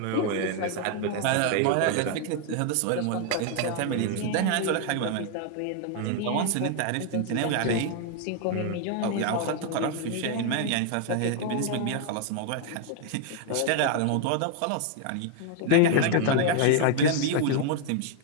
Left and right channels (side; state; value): both; different; correlation 0.00